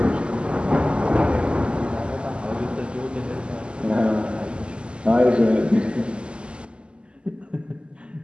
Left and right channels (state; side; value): late; left; 0.051 ms